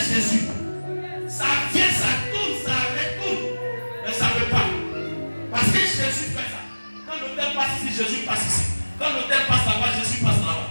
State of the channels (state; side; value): inverted; both; correlation -1.00